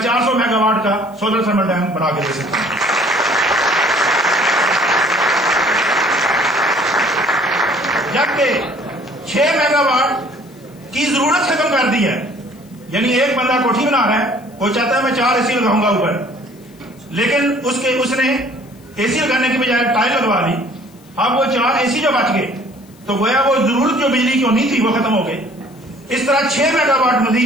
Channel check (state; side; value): noise; left; hiss, 29 dB below the sound